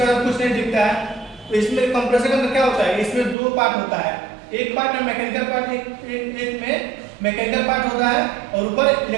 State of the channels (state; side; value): drops out; left; at 3.4 s